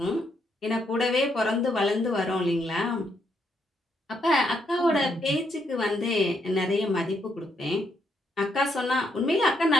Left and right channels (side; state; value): both; normal; correlation 0.76